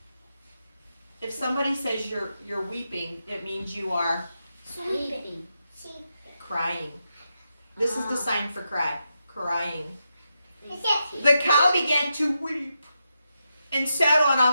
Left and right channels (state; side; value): inverted; both; correlation -0.86